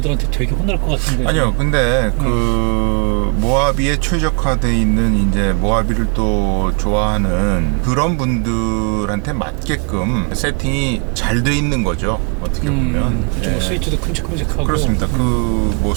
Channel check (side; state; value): left; quieter; 37.1 dB